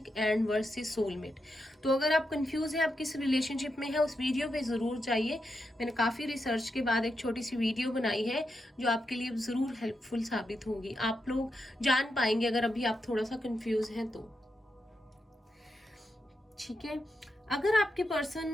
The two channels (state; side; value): normal; both; correlation 0.85